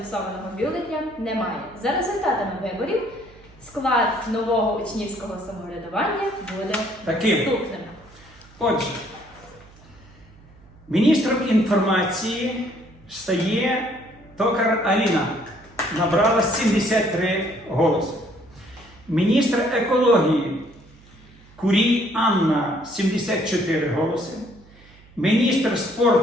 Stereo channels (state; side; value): noise; right; hum, 25 dB below the sound